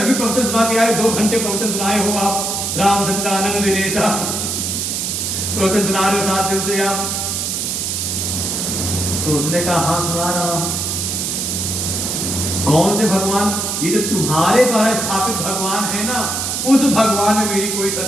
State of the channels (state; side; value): noise; right; hiss, 1 dB below the sound